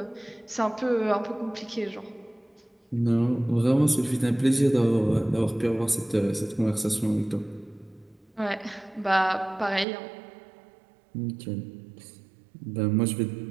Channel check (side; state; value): left; drops out; at 9.9 s